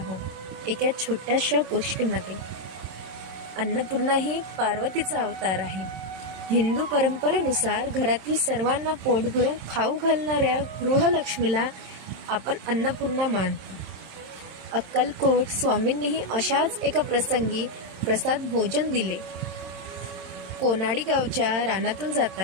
एका छोट्याशा गोष्टीमध्ये. अन्नपूर्णा ही पार्वतीचा अवतार आहे. हिंदू परंपरेनुसार घरातील सर्वांना पोट भरून खाऊ घालणाऱ्या गृहलक्ष्मीला आपण अन्नपूर्णा मानतो. अक्कलकोट स्वामींनीही अशाच एका प्रसंगी प्रसाद भोजन दिले. कोनाडी गावच्या रानातून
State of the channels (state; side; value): late; left; 27 ms